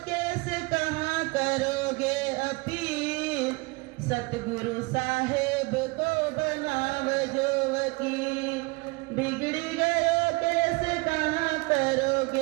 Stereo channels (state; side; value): quieter; left; 26.9 dB